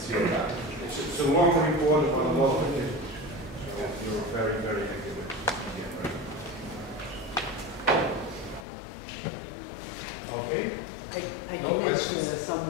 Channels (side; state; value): right; drops out; at 8.7 s